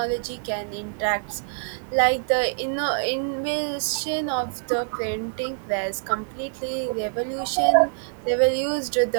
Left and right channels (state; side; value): silent; left; digital silence